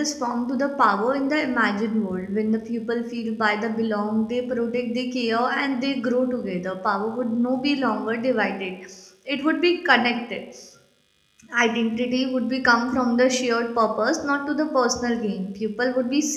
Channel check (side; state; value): both; identical; correlation 1.00